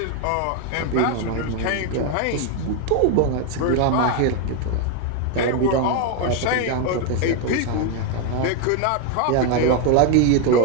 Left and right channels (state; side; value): different; both; correlation 0.01